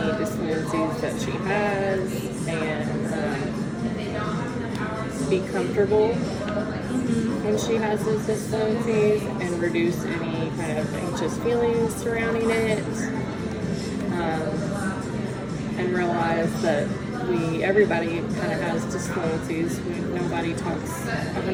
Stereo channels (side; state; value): both; identical; correlation 1.00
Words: disfluencies that she has and be comfortable when she has those disfluencies and reduce any kind of anxious feelings surrounding it. And realize that everybody kind of has disfluencies. Nobody talks